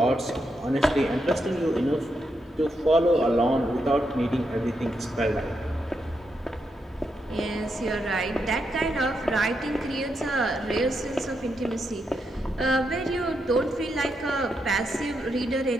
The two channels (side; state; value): both; normal; correlation 0.82